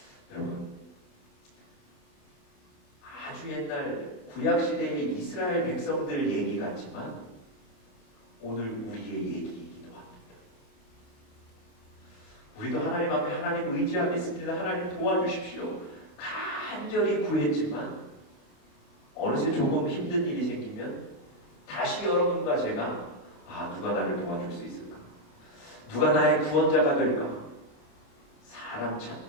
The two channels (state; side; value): late; right; 28 ms